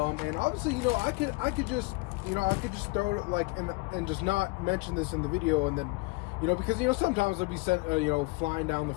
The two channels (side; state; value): right; quieter; 25.6 dB